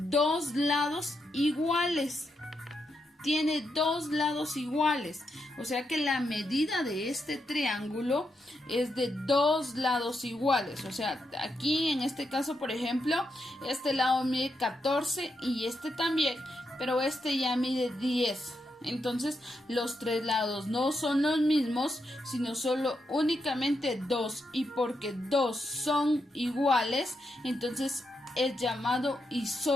lados iguales. Tiene 2 lados iguales, o sea que la medida de este triángulo es de 2 lados iguales. O sea, aquí en este caso, por ejemplo, este lado mide 14 y este también, pero este ya mide 10. Entonces los 3 lados no son los mismos, sino solo únicamente 2, y porque 2 son iguales, entonces es llamado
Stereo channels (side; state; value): both; normal; correlation 0.83